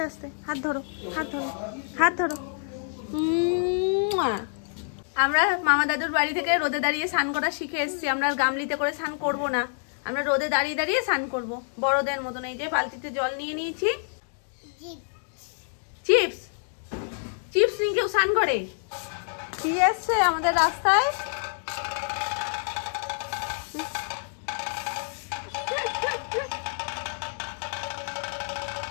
আস্তে, হাত ধরো, হাত ধরো, হাত ধরো। আমরা মামা দাদুর বাড়ি থেকে রোদে দাঁড়িয়ে স্নান করা শিখে এসেছি। আমরা আর গামলিতে করে স্নান করবো না, আমরা রোদে দাঁড়িয়ে দাঁড়িয়ে স্নান করবো বড়দের মতন। এই যে বালতিতে জল নিয়ে নিয়েছি। চিপস, চিপস নিয়ে কেউ স্নান করে? কি এসছে আমাদের রাস্তায়?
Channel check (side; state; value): right; silent; digital silence